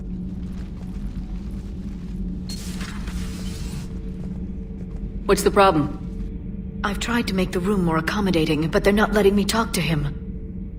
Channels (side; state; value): both; identical; correlation 1.00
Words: What's the problem? I've tried to make the room more accommodating, but they're not letting me talk to him.